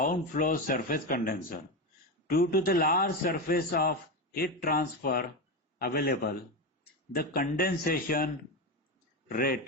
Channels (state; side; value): normal; both; correlation 0.16